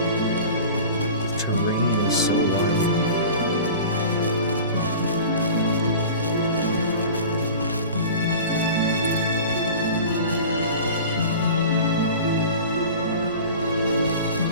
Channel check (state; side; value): inverted; both; correlation -0.38